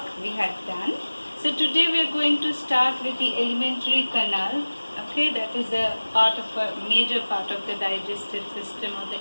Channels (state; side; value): inverted; both; correlation -1.00